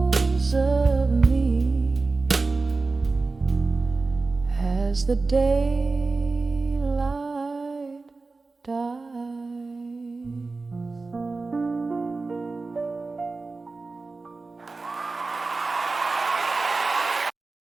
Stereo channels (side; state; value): left; quieter; 3.8 dB